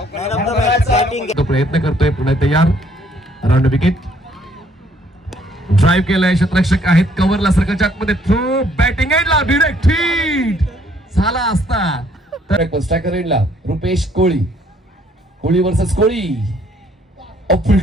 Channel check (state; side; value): normal; both; correlation 0.64